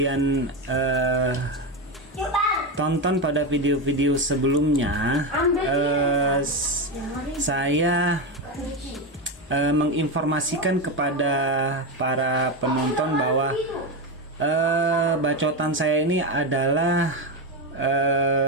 tonton pada video-video sebelumnya, saya menginformasikan kepada para penonton bahwa bacotan saya ini adalah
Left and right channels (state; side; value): normal; both; correlation 0.12